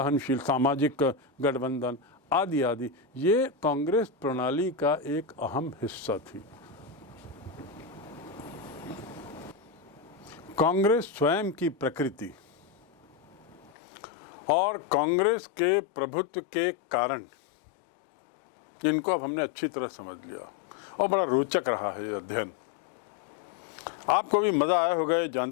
गठबंधन आदि आदि, ये कांग्रेस प्रणाली का एक अहम हिस्सा थी। कांग्रेस स्वयं की प्रकृति और कांग्रेस के प्रभुत्व के कारण, जिनको अब हमने अच्छी तरह समझ लिया और बड़ा रोचक रहा है ये अध्ययन। आपको भी मज़ा आया होगा ये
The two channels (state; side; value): drops out; right; at 13.7 s